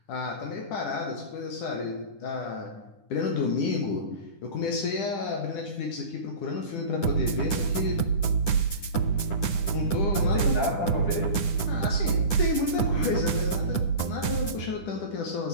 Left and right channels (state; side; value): late; right; 10 ms